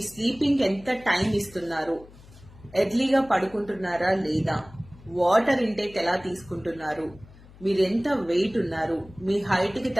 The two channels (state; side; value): noise; left; hum, 22 dB below the sound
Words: స్లీపింగ్ ఎంత టైం ఇస్తున్నారు, ఎర్లీగా పడుకుంటున్నారా లేదా, వాటర్ ఇంటేక్ ఎలా తీసుకుంటున్నారు, మీరు ఎంత వెయిట్ ఉన్నారు, మీ హైట్కి